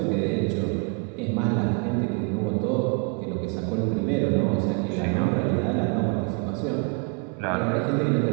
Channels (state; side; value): quieter; left; 35.4 dB